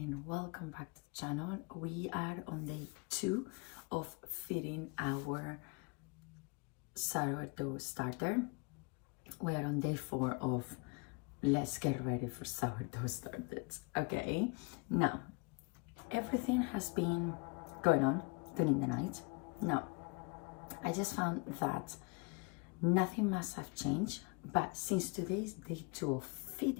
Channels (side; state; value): right; quieter; 31.4 dB